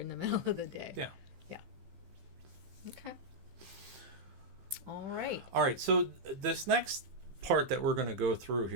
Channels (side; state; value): left; late; 15 ms